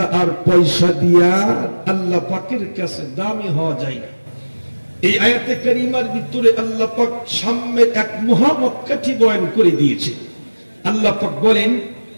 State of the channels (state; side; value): inverted; both; correlation -1.00